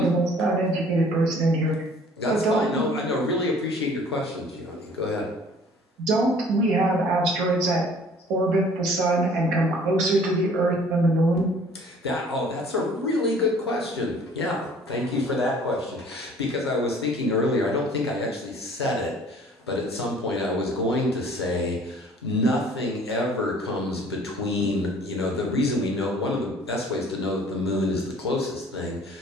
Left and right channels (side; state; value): both; normal; correlation 0.53